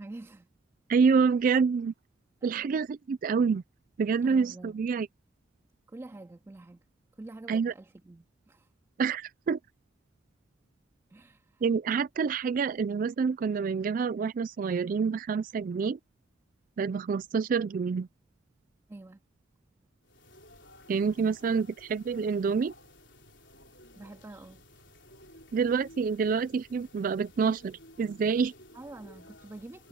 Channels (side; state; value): left; quieter; 5.2 dB